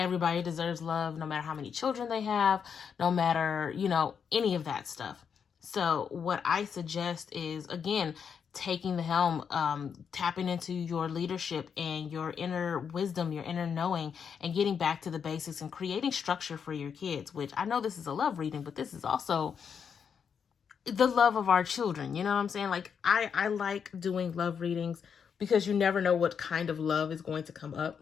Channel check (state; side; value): quieter; right; 6.9 dB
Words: deserves love, no matter how many children they have, no matter, you know, any of that stuff. So what I suggest is, again, taking the helm, tapping into your leadership and your inner wisdom, your inner knowing, and getting back to the basics and creating structure for your kids, which I know this is a love reading, but this is also the love of our children. You know what I'm saying? Like, I like doing love readings because you never know what kind of love is going to come up.